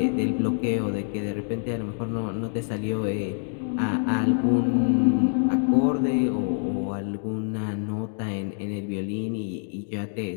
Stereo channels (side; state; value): right; silent; 61 dB below the other